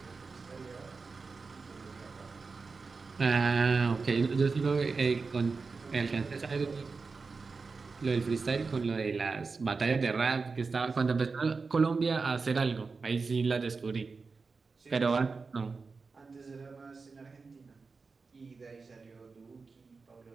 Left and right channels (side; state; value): left; quieter; 4.4 dB